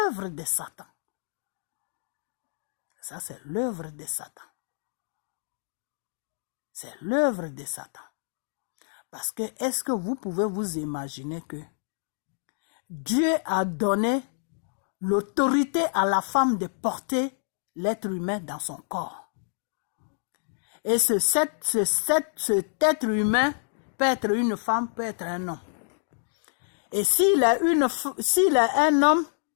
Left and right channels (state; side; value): silent; right; digital silence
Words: de Satan. Ça, c'est l'œuvre de Satan. C'est l'œuvre de Satan. Parce que, est-ce que vous pouvez vous imaginer que Dieu a donné l'autorité à la femme de porter l'être humain dans son corps? Et cet être humain peut être une femme, peut être un homme. Et s'il est un homme,